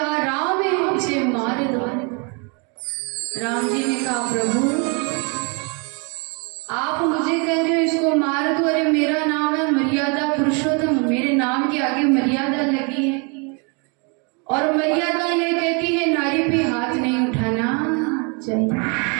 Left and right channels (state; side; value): quieter; left; 34.1 dB